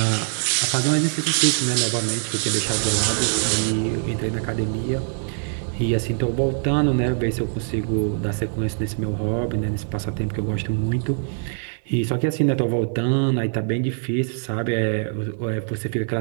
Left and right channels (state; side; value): silent; left; digital silence